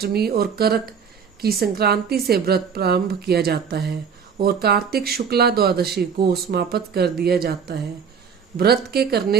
और करक की संक्रांति से व्रत प्रारंभ किया जाता है और कार्तिक शुक्ला द्वादशी को समाप्त कर दिया जाता है। व्रत के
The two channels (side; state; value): left; quieter; 6.7 dB